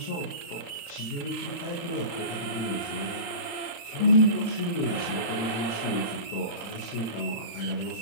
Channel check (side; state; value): right; late; 35 ms